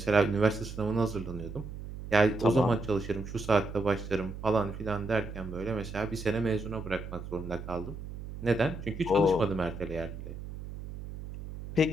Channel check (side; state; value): right; noise; hum, 10 dB below the sound